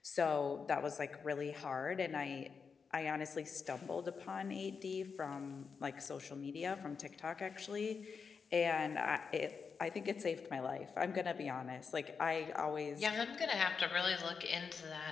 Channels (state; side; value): quieter; right; 5.6 dB